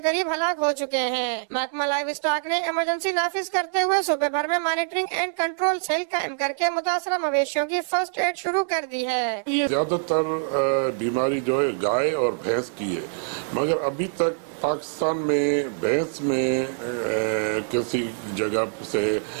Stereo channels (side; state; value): left; silent; digital silence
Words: قریب ہلاک ہو چکے ہیں. محکمہ لائیو اسٹاک نے ایمرجنسی نافذ کرتے ہوئے صوبے بھر میں مانیٹرنگ اینڈ کنٹرول سیل قائم کر کے متاثرہ مویشیوں کی فرسٹ ایڈ شروع کر دی ہے. زیادہ تر بیماری جو ہے گائے اور بھینس کی ہے، مگر ابھی تک پاکستان میں بھینس میں کسی جگہ سے